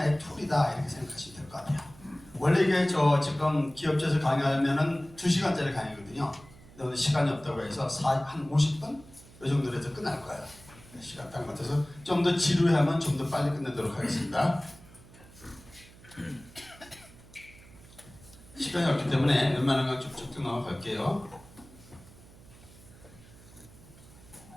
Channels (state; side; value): noise; right; hum, 22 dB below the sound